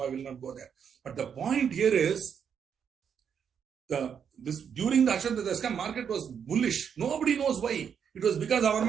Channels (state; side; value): quieter; left; 7.5 dB